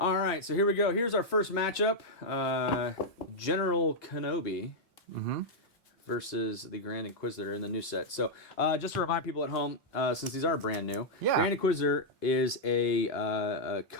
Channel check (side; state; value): both; normal; correlation -0.04